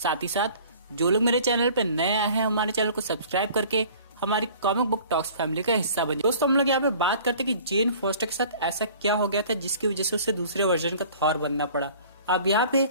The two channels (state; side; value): inverted; both; correlation -0.48